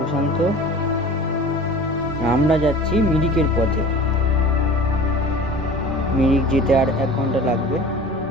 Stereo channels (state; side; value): normal; both; correlation 0.40